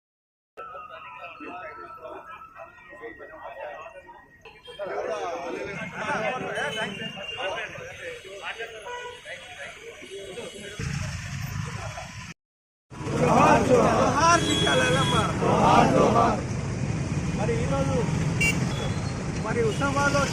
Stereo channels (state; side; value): identical; both; correlation 1.00